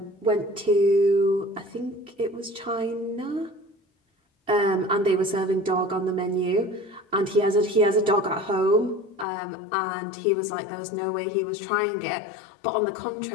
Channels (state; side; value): drops out; right; at 9.2 s